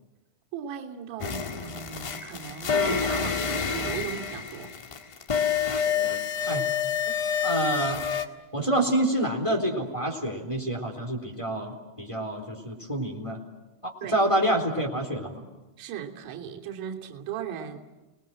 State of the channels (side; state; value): left; late; 1.5 ms